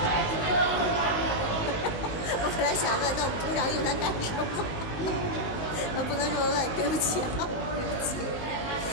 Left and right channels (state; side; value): late; right; 19 ms